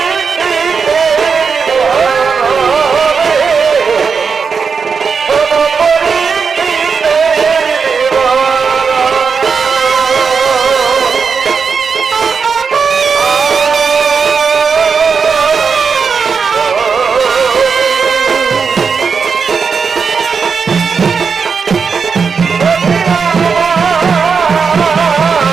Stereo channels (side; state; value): left; quieter; 5.6 dB